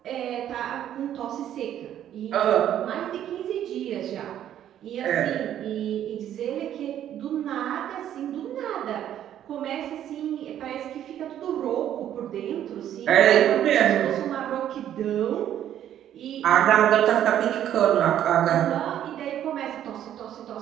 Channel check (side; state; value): left; quieter; 10.9 dB